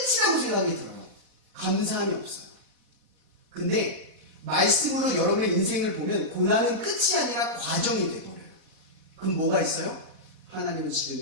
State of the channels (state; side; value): late; left; 4.1 ms